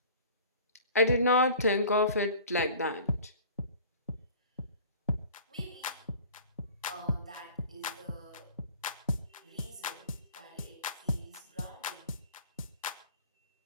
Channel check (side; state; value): both; inverted; correlation -0.46